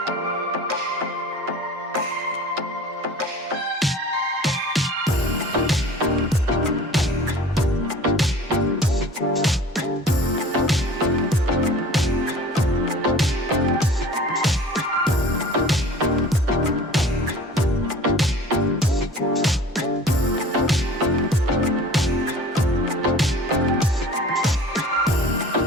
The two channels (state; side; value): normal; both; correlation 0.43